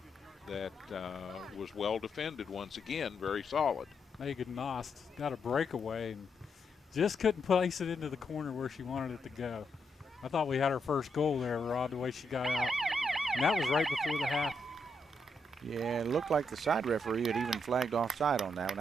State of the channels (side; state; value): both; normal; correlation 0.80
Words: that was well defended once again, very solid. Megan Nost got a breakaway and just couldn't place it into the corner where she wanted it to go. I thought we had our first goal there, Rod, the way she got out. And that was right before the half. Yeah, it looked like the side referee had even flagged offside on that one.